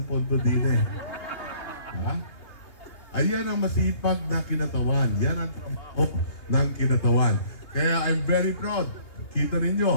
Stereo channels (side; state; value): right; late; 2.7 ms